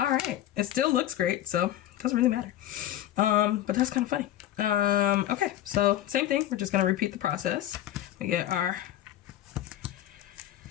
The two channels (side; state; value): right; quieter; 12.9 dB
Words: right, it still looks great, so it doesn't really matter. But that's kind of funny. Okay, so same thing. We're just gonna repeat the process. We get our